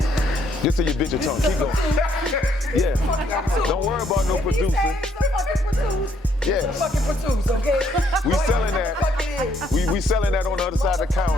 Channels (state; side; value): normal; both; correlation 0.69